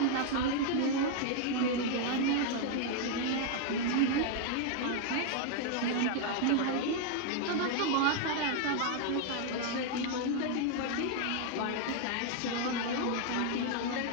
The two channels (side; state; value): both; different; correlation 0.00